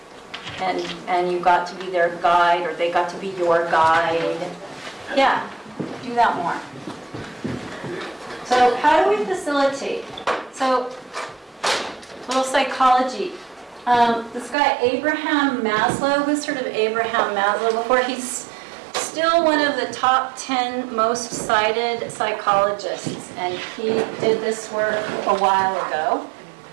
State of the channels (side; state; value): left; drops out; at 14.6 s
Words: And you got to be their guide, or they got to be your guide. Yeah, do that more. So how do we facilitate? So, little psychology. This guy, Abraham Maslow, who's heard of Abraham Maslow before? He's still one of the top 10 most cited psychologists, and he did this work a while ago.